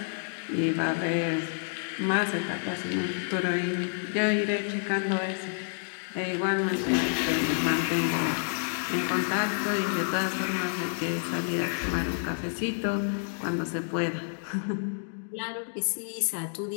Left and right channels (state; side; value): silent; right; digital silence